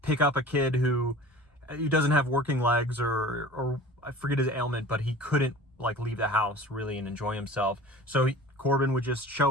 pick up a kid who doesn't have working legs, or I forget his ailment, but he couldn't like leave the house really and enjoy himself. So Corbin would just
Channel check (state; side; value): normal; both; correlation 0.41